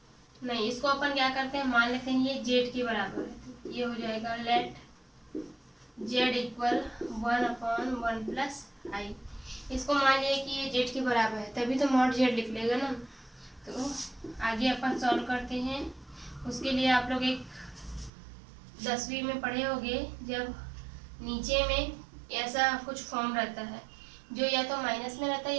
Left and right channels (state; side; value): drops out; left; at 18.1 s